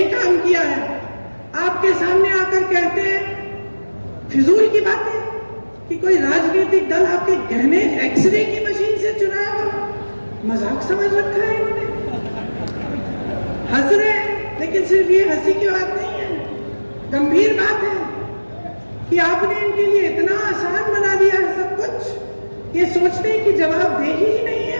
काम किया है, आपके सामने आकर कहते हैं फिजूल की बातें कि कोई राजनीतिक दल आपके गहने एक्सरे की मशीन से चुनाया हो। मजाक समझ रखा है इन्होंने, हंस रहे हैं, लेकिन सिर्फ ये हंसी की बात नहीं है, गंभीर बात है कि आपने इनके लिए इतना आसान बना दिया है सब कुछ। ये सोचते हैं कि जवाबदेही ही नहीं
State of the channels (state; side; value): inverted; both; correlation -1.00